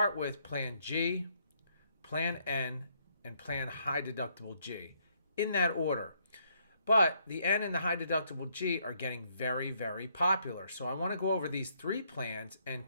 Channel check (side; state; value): both; inverted; correlation -0.71